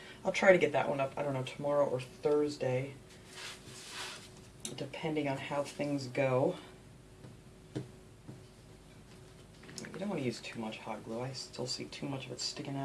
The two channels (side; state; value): both; identical; correlation 1.00